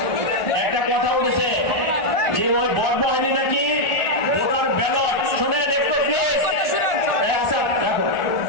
একটা কথা উঠেছে যে ওই বড়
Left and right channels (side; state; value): right; late; 1.4 ms